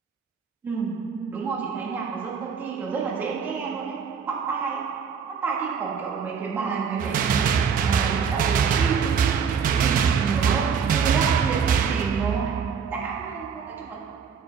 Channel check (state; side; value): quieter; left; 6.5 dB